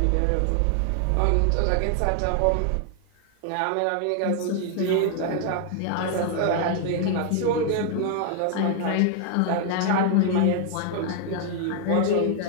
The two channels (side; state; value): both; different; correlation 0.00